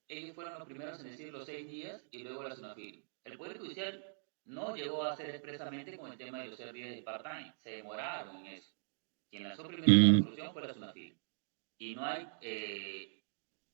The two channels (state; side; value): silent; left; digital silence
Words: ellos fueron los primeros en decir los 6 días y luego la SUNAFIL. El Poder Judicial no llegó a hacer expresamente con el tema de los 6 días de part-time, se demoraron en eso. Quien lanzó primero esa Mm, resolución fue la SUNAFIL. Y no hay